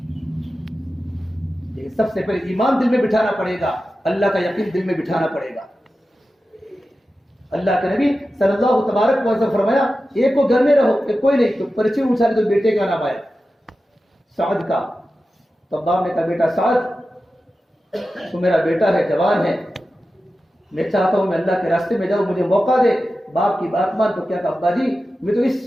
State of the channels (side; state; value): both; normal; correlation 0.93